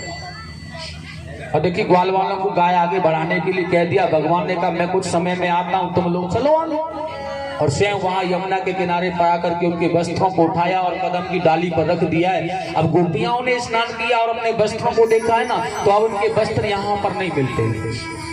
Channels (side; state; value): both; identical; correlation 1.00